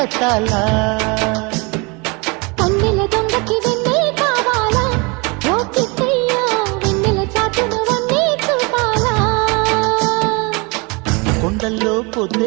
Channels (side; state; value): left; quieter; 28.7 dB